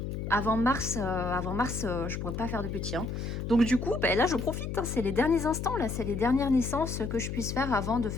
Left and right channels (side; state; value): left; noise; hum, 4 dB below the sound